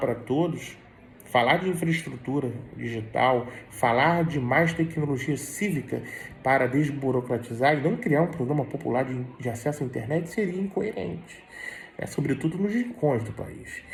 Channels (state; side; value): identical; both; correlation 1.00